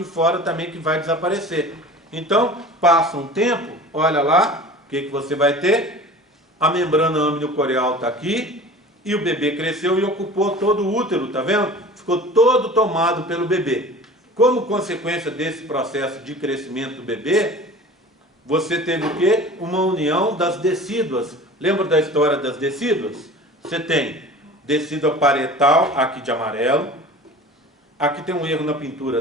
fora também que vai desaparecer. Então, passa um tempo, olha lá, o que você vai ter? A membrana amniocorial está aqui e o bebê cresceu e ocupou todo o útero, tá vendo? Ficou todo tomado pelo bebê. Como consequência desse processo de crescimento do bebê, você teve o quê? Uma união das decíduas. Lembra da história das decíduas? Você tem decídua parietal, aqui de amarelo. Aqui tem um erro na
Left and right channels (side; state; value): both; normal; correlation 0.40